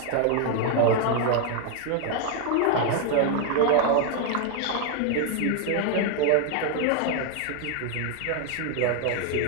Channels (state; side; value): different; both; correlation 0.01